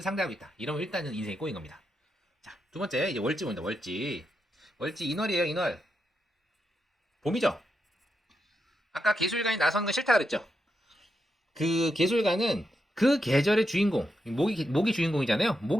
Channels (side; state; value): both; normal; correlation 0.84